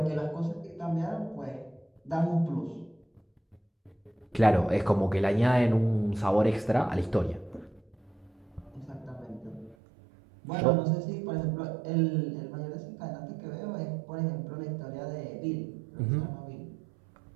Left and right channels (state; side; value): drops out; left; at 9.8 s